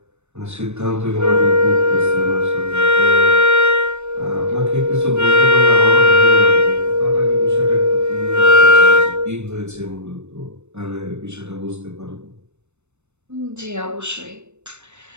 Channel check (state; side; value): late; left; 0.82 ms